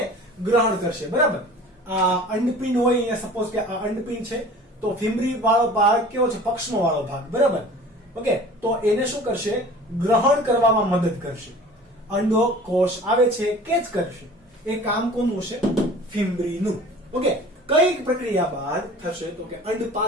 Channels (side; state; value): both; normal; correlation 0.44